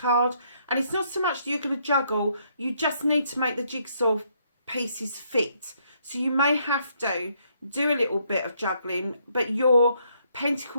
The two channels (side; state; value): both; inverted; correlation -0.71